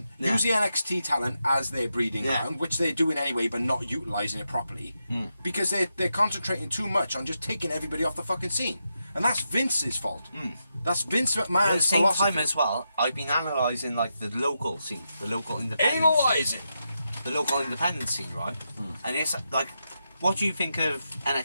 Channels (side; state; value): both; inverted; correlation -0.85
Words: Yeah. Use the NXT talent as their breeding Yeah. ground, which they're doing anyway, but not utilising it properly. Because they're concentrating too much on just taking everybody off the fucking scene. And that's Vince's fault. That's Vince At the McMahon's same philosophy. time as well, I've been analysing, like, the local scene, the local independent scene. Analysing. The local independent scene, right? And it's like, what do you think of